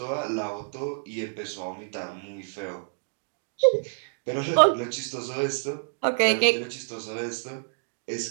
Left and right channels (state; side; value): silent; left; digital silence